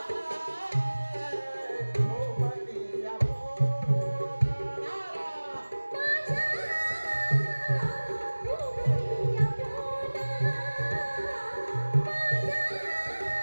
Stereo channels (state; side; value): inverted; both; correlation -1.00